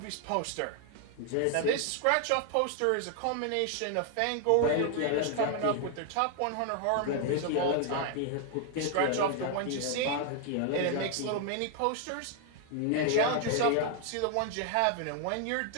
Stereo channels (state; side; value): different; both; correlation 0.00